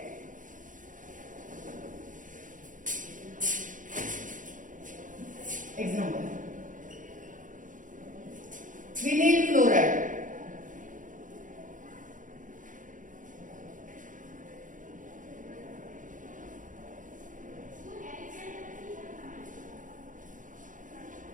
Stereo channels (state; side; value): late; left; 0.38 ms